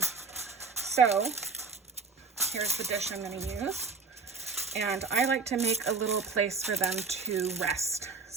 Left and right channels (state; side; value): quieter; left; 4.7 dB